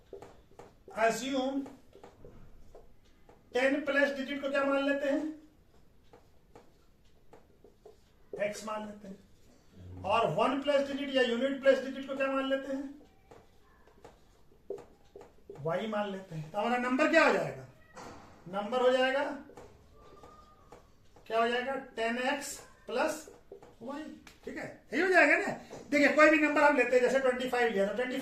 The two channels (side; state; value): both; identical; correlation 1.00